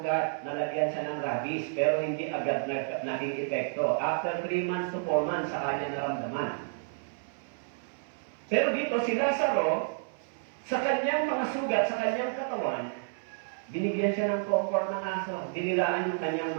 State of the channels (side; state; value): left; silent; 58 dB below the other